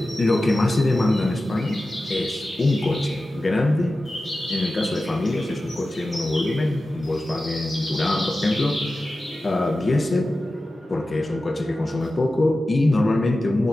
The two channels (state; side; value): normal; both; correlation 0.94